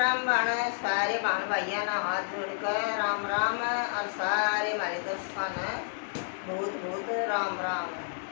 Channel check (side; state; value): right; silent; digital silence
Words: बाण सारे बाण भाइया ना हाथ जोड़कर राम राम और सारे हमारे दोस्तों ने बहुत बहुत राम राम।